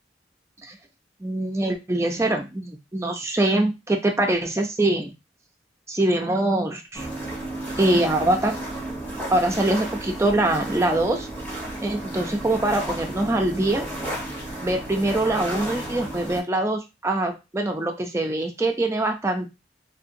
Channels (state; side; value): normal; both; correlation 0.65